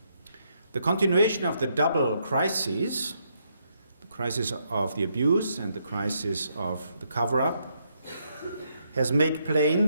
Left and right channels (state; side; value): inverted; both; correlation -0.76